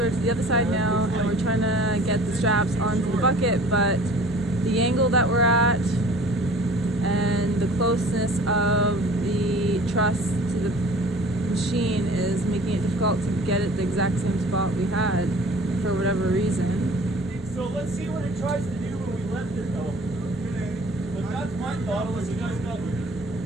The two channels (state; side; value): normal; both; correlation 0.47